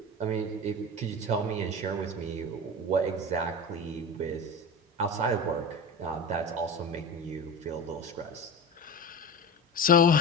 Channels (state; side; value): normal; both; correlation 0.28